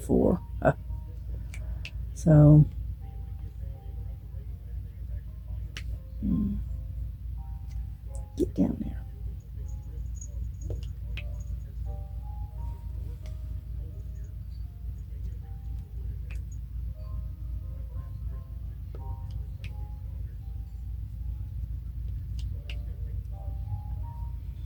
4. So get down there.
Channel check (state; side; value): identical; both; correlation 1.00